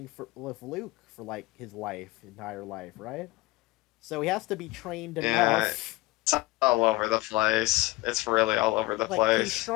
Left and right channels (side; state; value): right; quieter; 20.8 dB